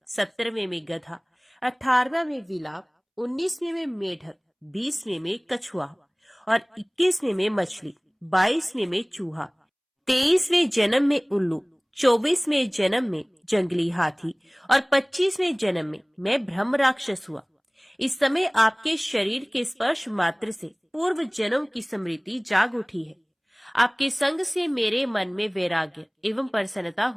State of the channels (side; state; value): both; identical; correlation 1.00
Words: 17वें में गधा, 18वें में विलाप, 19वें में मेढक, 20वें में कछुआ और 21वें में मछली, 22वें में चूहा, 23वें जन्म में उल्लू, 24वें जन्म में जंगली हाथी और 25वें जन्म में मैं ब्रह्म राक्षस हुआ। इस समय आपके शरीर के स्पर्श मात्र से पूर्व जन्म की स्मृति जाग उठी है। आपके संग से मेरे मन में वैराग्य एवं प्रसन्नता